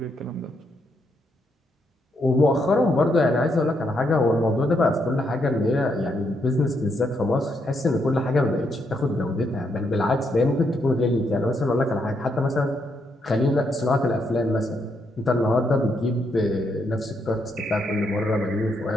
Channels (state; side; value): normal; both; correlation 0.77